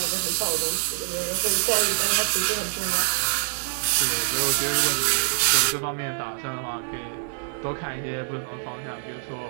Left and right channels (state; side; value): silent; left; digital silence